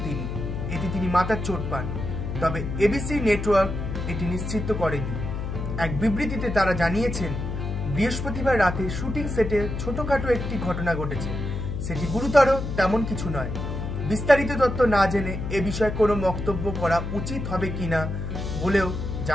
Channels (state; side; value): noise; left; hum, 4 dB below the sound